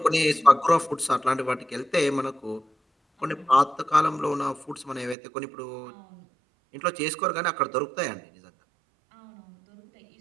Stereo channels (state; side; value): drops out; left; at 5.2 s